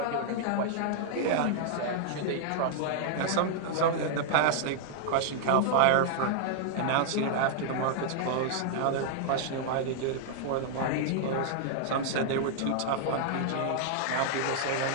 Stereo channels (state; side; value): different; both; correlation -0.01